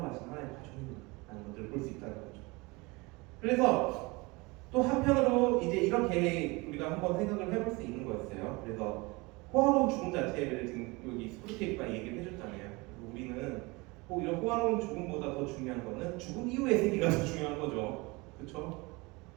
가신 하나님의 가족이라는 것들을 볼 수 있다는 거죠. 그래서 또 한편으로 이제 이렇게 우리가 한번 생각을 해볼 수 있는 거였어요. 그래서 호화로운 죽음 자체를 지금 여기 스프루테이프가 얘기를 해줬잖아요. 우리는 이런 호화로운 죽음보다 더 중요한 거는 죽음 이후의 세계가 더 중요한 거죠. 그렇죠?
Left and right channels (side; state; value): left; quieter; 25.1 dB